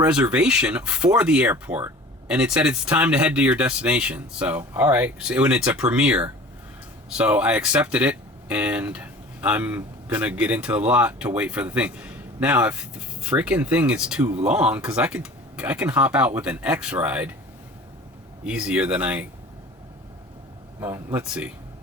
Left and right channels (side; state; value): both; normal; correlation 0.42